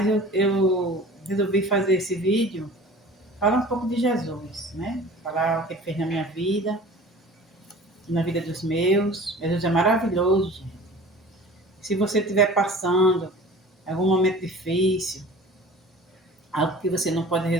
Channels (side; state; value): both; normal; correlation 0.43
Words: eu resolvi fazer esse vídeo, falar um pouco de Jesus, né? Falar o que ele fez na minha vida, na vida dos meus. Jesus é maravilhoso, gente. Se você estiver passando algum momento difícil, algo que você não pode